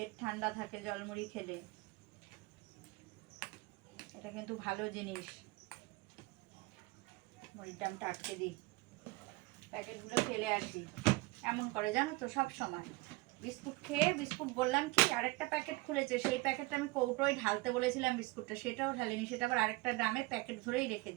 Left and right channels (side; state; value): left; quieter; 22.7 dB